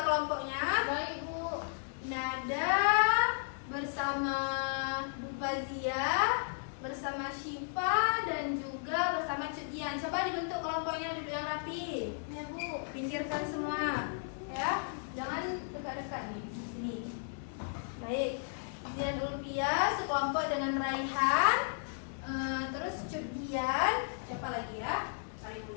kelompoknya. Baik, Bu. Nada bersama Bu Fazia, bersama Syifa, dan juga bersama Cudian. Coba dibentuk kelompoknya, duduk yang rapi. Ya, Bu. Pinggirkan semua, ya. Jangan dekat-dekat nih, di sini. Baik. Dian Ulfia sekelompok dengan Raihan, terus Cudian. Siapa lagi ya? Kali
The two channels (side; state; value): right; silent; digital silence